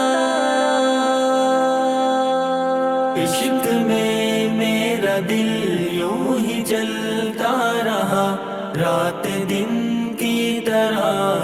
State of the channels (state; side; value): identical; both; correlation 1.00